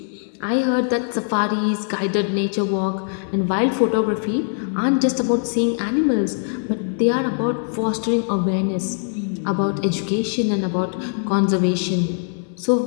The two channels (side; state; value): right; silent; 65 dB below the other